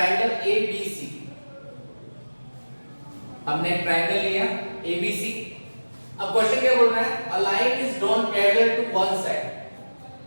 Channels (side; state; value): both; inverted; correlation -1.00